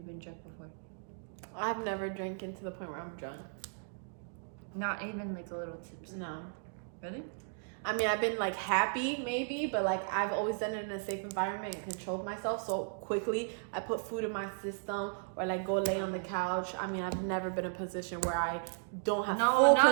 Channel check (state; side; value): silent; left; digital silence